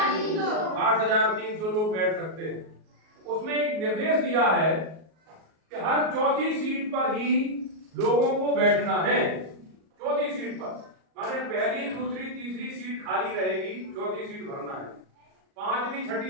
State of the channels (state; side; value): late; left; 38 ms